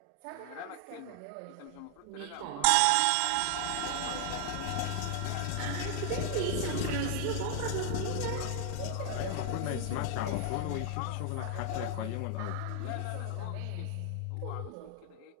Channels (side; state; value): both; different; correlation 0.00